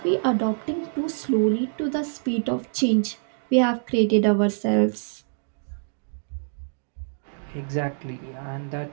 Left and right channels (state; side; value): silent; left; digital silence